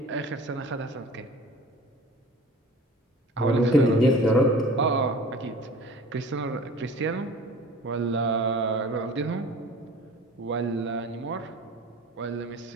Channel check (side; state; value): both; normal; correlation 0.43